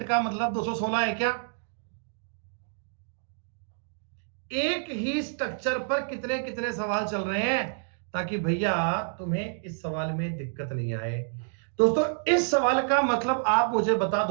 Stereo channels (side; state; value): left; silent; digital silence